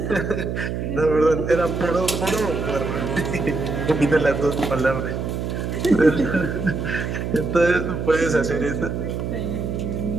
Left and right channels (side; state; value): right; noise; hum, 3 dB below the sound